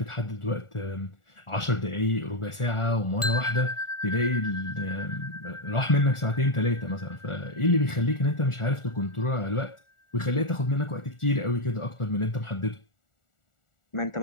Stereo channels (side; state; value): right; late; 1.4 ms